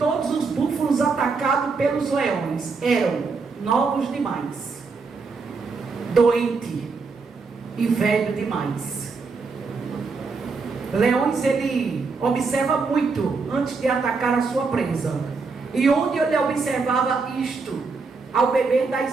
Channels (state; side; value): quieter; left; 4.5 dB